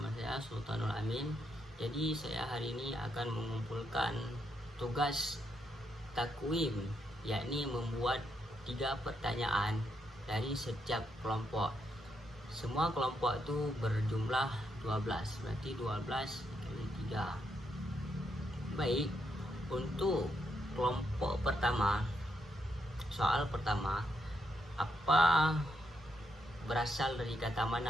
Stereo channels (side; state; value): both; normal; correlation 0.79